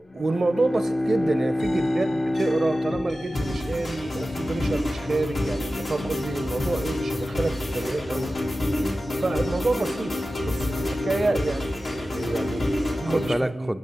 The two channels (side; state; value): both; normal; correlation 0.94